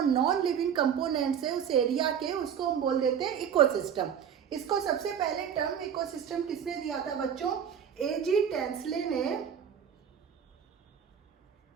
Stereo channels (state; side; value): quieter; left; 8.2 dB